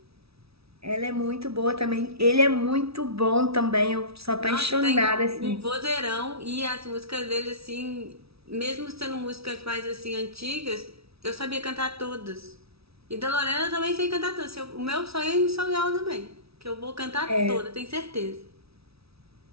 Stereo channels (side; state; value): left; late; 0.77 ms